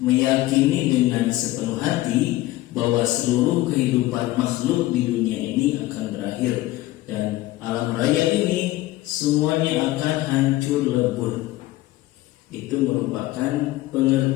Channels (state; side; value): quieter; right; 17.1 dB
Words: dengan sepenuh hati bahwa seluruh kehidupan makhluk di dunia ini akan berakhir dan alam raya ini semuanya akan hancur lebur. Itu merupakan